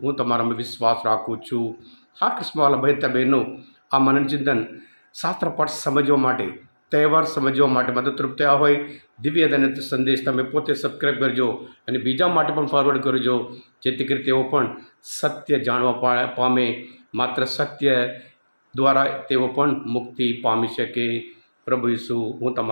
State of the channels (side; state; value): both; inverted; correlation -1.00